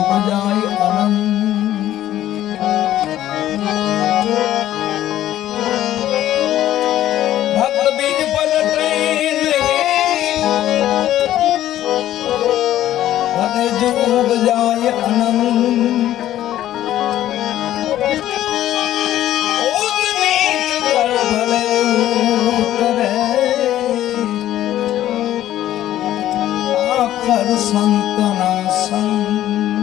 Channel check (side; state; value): right; quieter; 12.9 dB